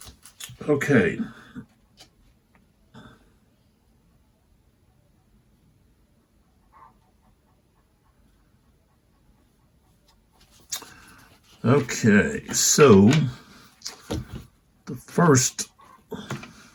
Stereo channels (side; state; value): both; identical; correlation 1.00